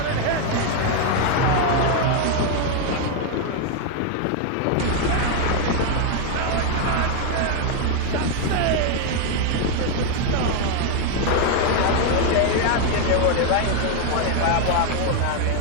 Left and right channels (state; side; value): different; both; correlation 0.01